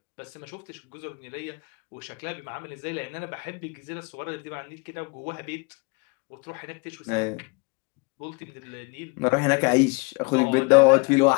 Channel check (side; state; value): right; quieter; 29.5 dB